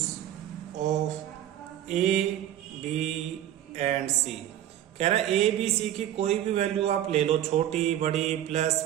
of a b and c. कह रहा है A B C की कोई भी value आप ले लो, छोटी बड़ी प्लस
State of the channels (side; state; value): left; quieter; 11.9 dB